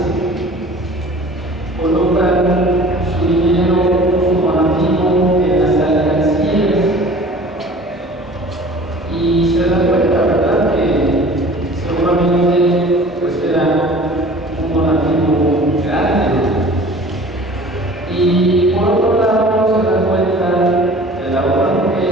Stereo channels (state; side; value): normal; both; correlation 0.45